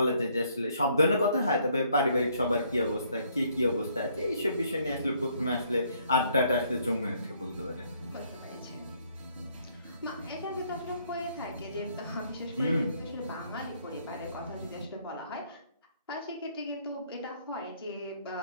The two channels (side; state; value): both; inverted; correlation -0.67